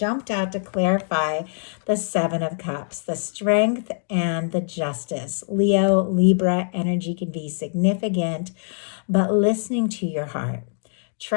out to clarify the Seven of Cups, the Strength and the Justice. Leo, Libra energy can be significant, but listening to your heart,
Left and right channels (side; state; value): right; silent; digital silence